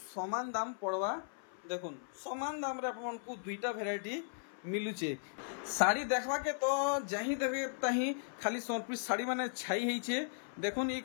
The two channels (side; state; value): right; silent; 53 dB below the other